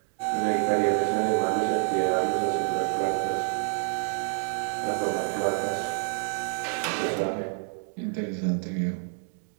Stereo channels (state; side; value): silent; left; 59 dB below the other